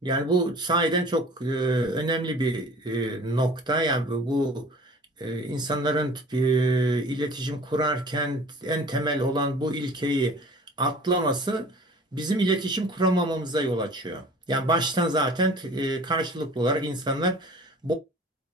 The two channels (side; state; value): both; normal; correlation 0.45